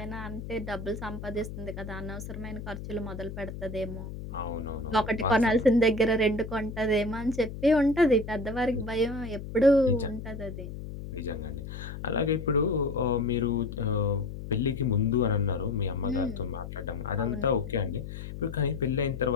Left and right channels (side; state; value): left; noise; hum, 9 dB below the sound